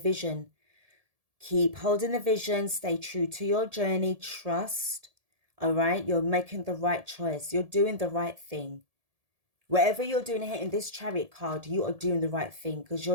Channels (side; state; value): left; late; 1.7 ms